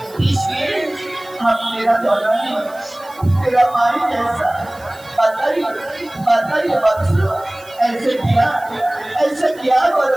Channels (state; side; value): noise; right; hiss, 24 dB below the sound